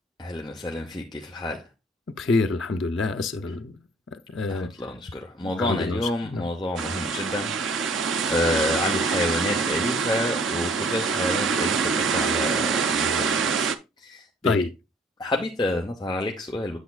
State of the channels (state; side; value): normal; both; correlation 0.56